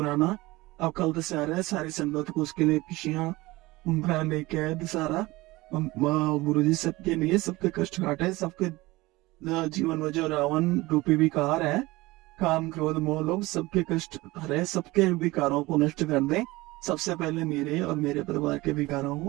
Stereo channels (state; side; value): quieter; left; 20.5 dB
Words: अब कल दशहरा है, सारी संगत को उसके लिए खुशियां उम्र लेके आए दशहरा। गुरु जी सबके लिए, सबके कष्ट काटे, सबके जीवन में जो रावण रूपी विकार है, काम क्रोध मोह लोभ, सबके कष्ट हरे, सबके विकारों को नष्ट कर दे। सबसे पहले मेरे और मेरे परिवार के विकारों